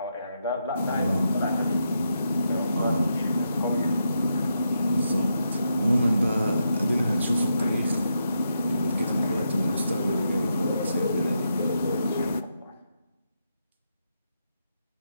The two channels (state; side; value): inverted; both; correlation -0.83